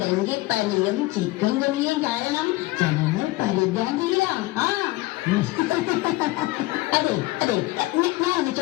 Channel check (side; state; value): right; quieter; 19.6 dB